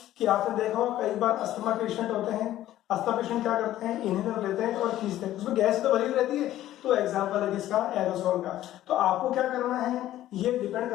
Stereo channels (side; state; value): right; quieter; 13.6 dB